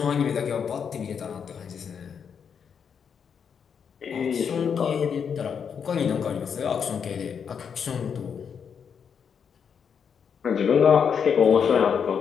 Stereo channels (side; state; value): right; quieter; 7.0 dB